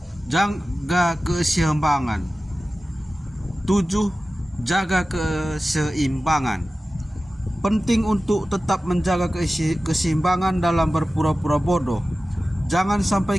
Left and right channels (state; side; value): normal; both; correlation 0.95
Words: Jaga keseimbangan. 7. Jaga keseimbangan. Penting untuk tetap menjaga keseimbangan dalam berpura-pura bodoh. Jangan